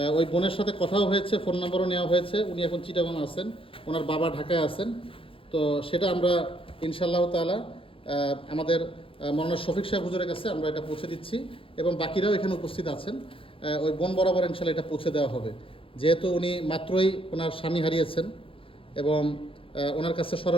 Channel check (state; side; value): late; right; 0.26 ms